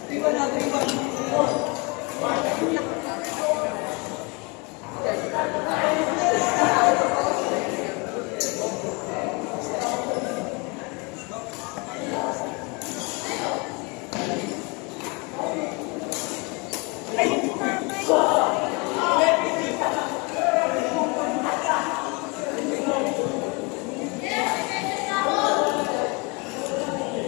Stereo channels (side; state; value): right; quieter; 29.6 dB